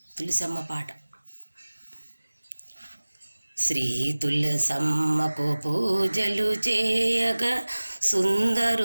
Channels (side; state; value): both; inverted; correlation -1.00